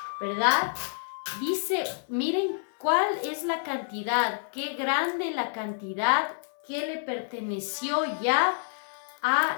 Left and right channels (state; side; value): silent; right; digital silence